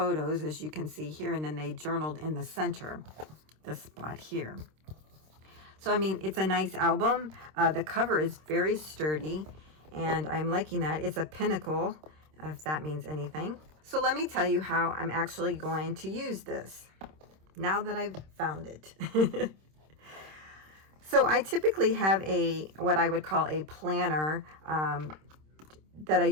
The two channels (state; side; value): late; left; 26 ms